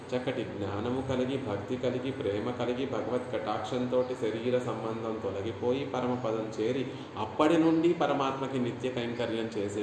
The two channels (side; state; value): both; identical; correlation 1.00